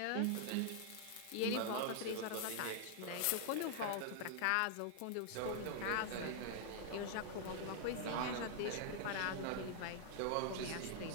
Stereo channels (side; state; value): both; different; correlation -0.01